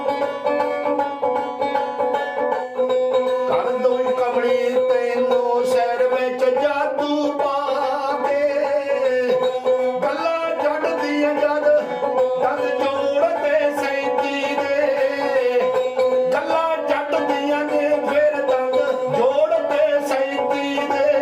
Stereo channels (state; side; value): identical; both; correlation 1.00